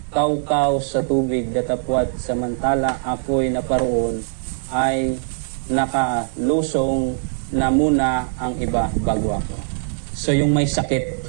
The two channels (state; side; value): silent; left; 58 dB below the other